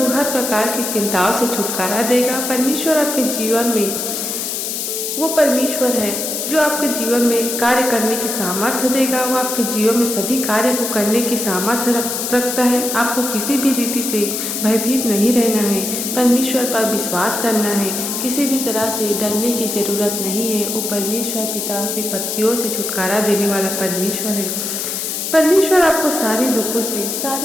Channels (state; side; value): noise; left; hiss, 3 dB below the sound